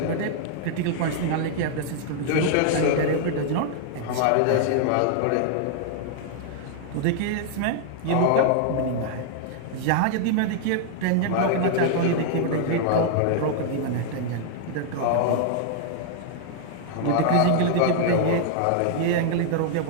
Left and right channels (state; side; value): different; both; correlation -0.01